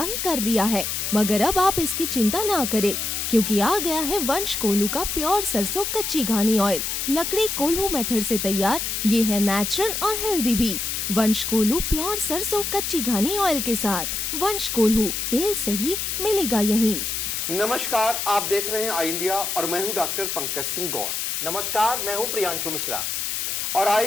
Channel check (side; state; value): left; noise; hiss, 2 dB below the sound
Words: ही कर लिया है, मगर अब आप इसकी चिंता ना करें, क्योंकि आ गया है वंश कोल्हू का प्योर सरसों कच्ची घानी ऑयल। लकड़ी कोल्हू मेथड से तैयार, ये है नेचुरल और हेल्दी भी। वंश कोल्हू प्योर सरसों कच्ची घानी ऑयल के साथ। वंश कोल्हू, तेल सही मिलेगा यहीं। नमस्कार, आप देख रहे हैं आई इंडिया और मैं हूं डॉक्टर पंकज सिंह गौर। नमस्कार, मैं हूं प्रियांशु मिश्रा और आई